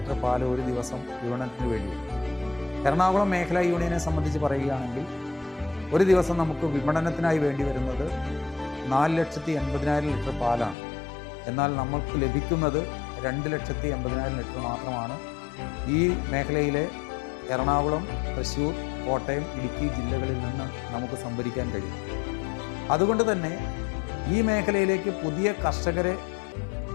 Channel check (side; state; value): right; drops out; at 10.8 s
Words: പാൽ ഒരു ദിവസം വിപണനത്തിന് വേണ്ടിയുണ്ട്. എറണാകുളം മേഖലാ യൂണിയനെ സംബന്ധിച്ച് പറയുകയാണെങ്കിൽ ഒരു ദിവസം നമുക്ക് വിപണനത്തിനായി വേണ്ടി വരുന്നത് 4,80,000 ലിറ്റർ പാലാണ്. എന്നാൽ നമ്മൾക്ക് ലഭിക്കുന്നത് 2,80,000 ലിറ്റർ മാത്രമാണ്. ഈ മേഖലയിലെ എറണാകുളം, തൃശ്ശൂർ, കോട്ടയം, ഇടുക്കി ജില്ലകളിൽ നിന്ന് നമുക്ക് സംഭരിക്കാൻ കഴിയും. അതുകൊണ്ട് തന്നെ ഈ മേഖലയിലേക്ക് പുതിയ കർഷകരെ